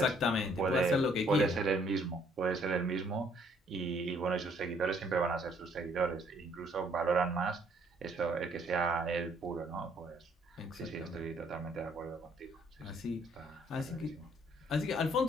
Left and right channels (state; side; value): normal; both; correlation 0.65